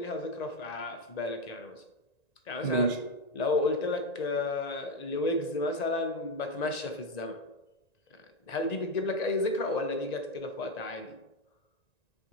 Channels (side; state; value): right; late; 1.9 ms